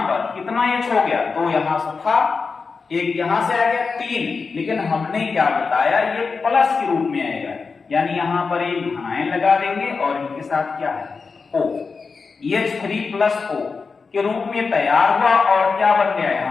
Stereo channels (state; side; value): quieter; right; 4.8 dB